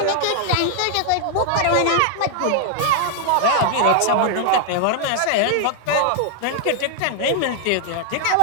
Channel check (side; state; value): both; different; correlation 0.00